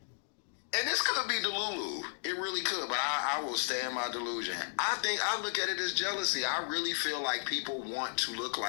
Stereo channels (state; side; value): silent; right; digital silence